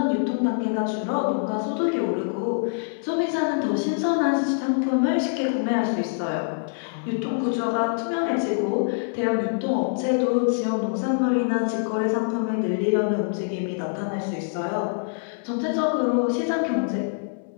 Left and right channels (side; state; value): right; silent; 62 dB below the other